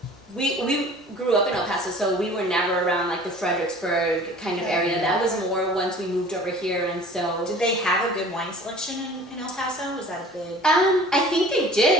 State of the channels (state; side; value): normal; both; correlation 0.46